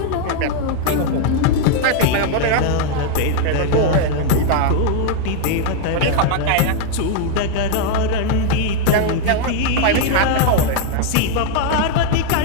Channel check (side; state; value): both; different; correlation 0.00